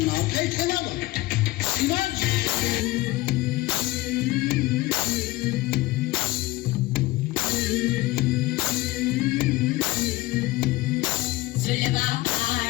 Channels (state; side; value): quieter; right; 18.7 dB